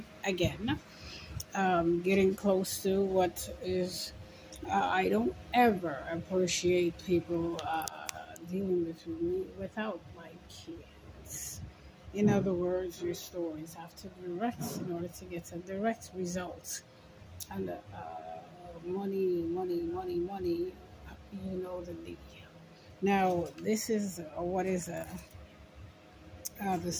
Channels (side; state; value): both; identical; correlation 1.00